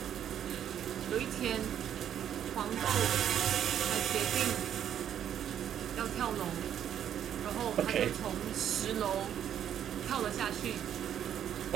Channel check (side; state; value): left; quieter; 9.8 dB